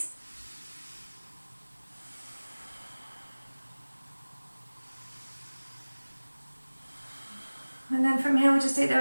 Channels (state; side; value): inverted; both; correlation -1.00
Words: And then from here, we'll just take